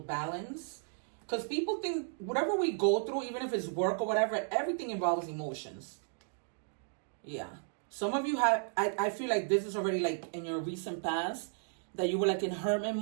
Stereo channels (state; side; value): silent; left; digital silence